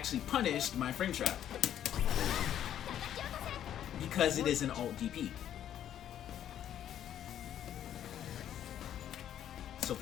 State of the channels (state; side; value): quieter; right; 10.5 dB